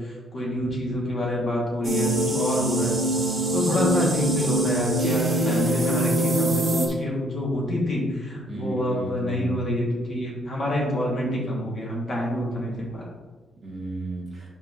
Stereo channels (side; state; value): both; normal; correlation 0.62